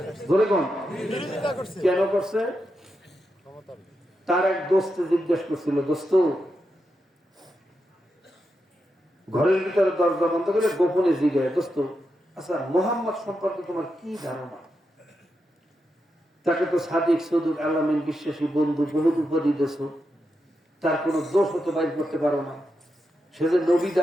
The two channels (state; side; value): normal; both; correlation 0.86